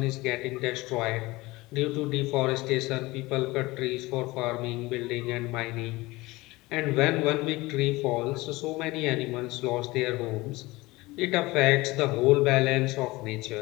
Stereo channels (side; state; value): right; quieter; 20.9 dB